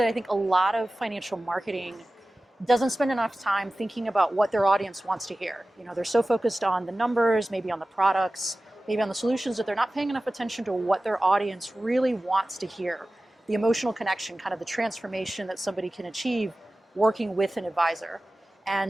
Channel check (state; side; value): normal; both; correlation 0.96